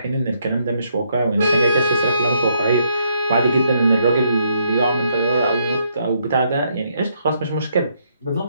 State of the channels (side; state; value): both; inverted; correlation -0.73